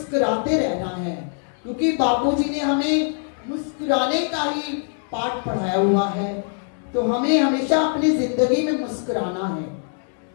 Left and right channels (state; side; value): silent; right; 64 dB below the other